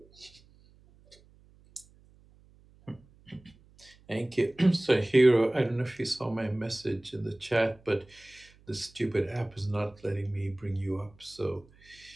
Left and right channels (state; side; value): noise; right; hum, 28 dB below the sound